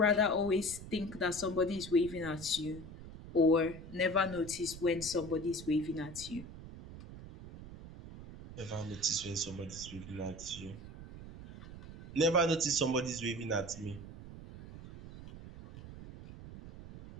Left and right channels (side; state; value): right; noise; rumble, 13 dB below the sound